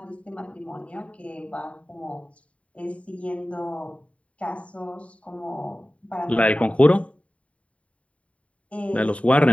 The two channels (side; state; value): right; late; 0.065 ms